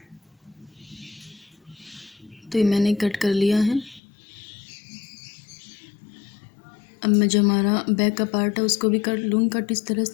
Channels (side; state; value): right; drops out; at 4.0 s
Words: तो ये मैंने कट कर लिया है। अब मैं जो हमारा बैक का पार्ट है उसको भी कर लूँगी कट इस तरह